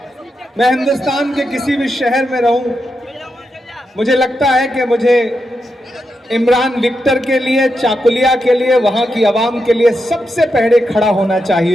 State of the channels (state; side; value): normal; both; correlation 0.86